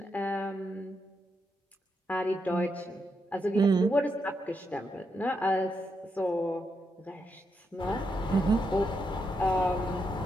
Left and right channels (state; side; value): normal; both; correlation 0.82